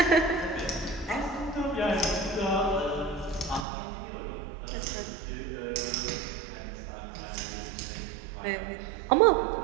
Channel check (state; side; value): drops out; left; at 3.7 s